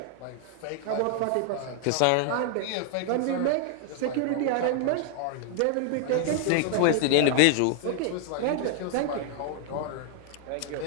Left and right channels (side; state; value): both; different; correlation 0.00